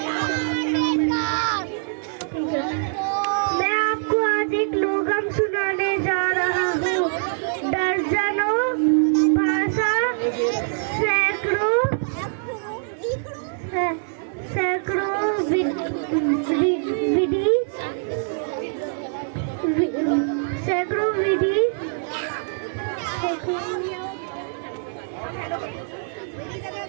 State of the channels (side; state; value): left; silent; 63 dB below the other